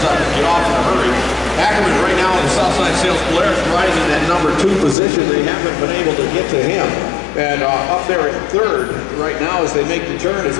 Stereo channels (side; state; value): right; drops out; at 5.0 s